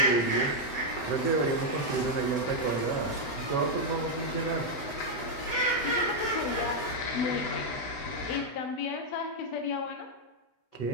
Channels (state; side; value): late; right; 8.1 ms